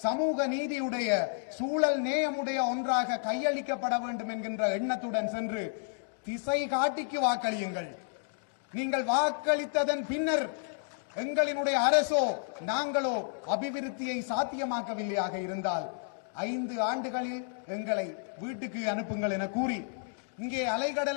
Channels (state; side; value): silent; right; digital silence